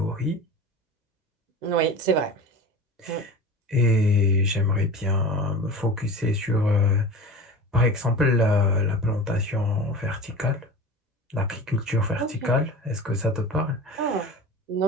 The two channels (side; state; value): both; normal; correlation 0.34